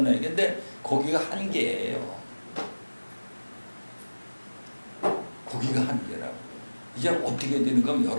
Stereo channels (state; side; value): inverted; both; correlation -1.00